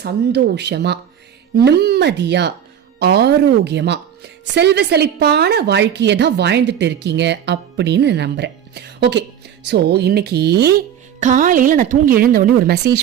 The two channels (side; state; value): left; quieter; 9.4 dB